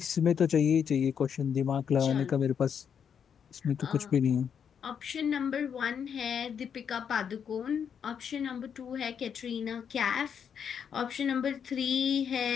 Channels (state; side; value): quieter; right; 7.6 dB